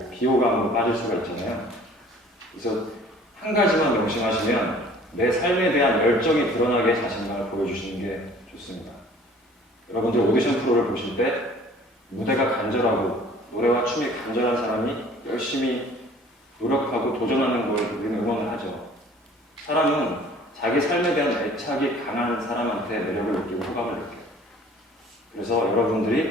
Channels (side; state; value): both; normal; correlation 0.51